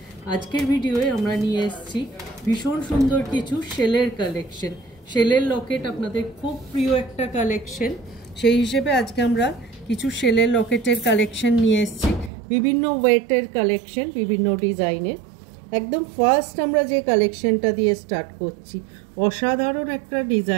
आजकेर भिडियोए आमरा निये एसेछि भीषण सुंदर किछु शेलेर कालेक्शन। शेलेर लकेट आपनादेर खूब प्रिय एकटा कालेक्शन, सेई हिसेबे आजके आमरा किछु शेलेर लकेटेर कालेक्शन निये एसेछि। विभिन्न वेटेर कालेक्शन, विभिन्न डिजाइनेर। एकदम फार्स्ट आमरा जे कालेक्शनटा दिये स्टार्ट करछि, असाधारण एकटा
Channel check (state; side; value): drops out; left; at 12.3 s